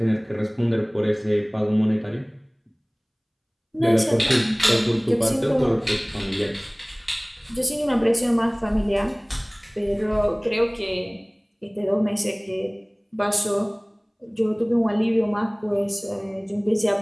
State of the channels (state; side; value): identical; both; correlation 1.00